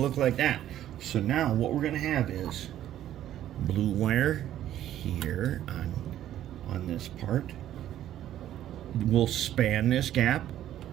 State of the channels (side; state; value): left; quieter; 12.1 dB